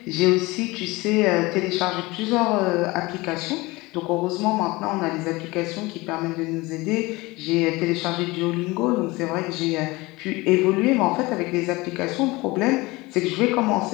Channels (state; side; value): quieter; right; 22.1 dB